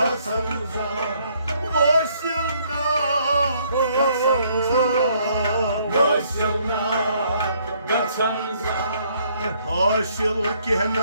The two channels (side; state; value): both; inverted; correlation -0.66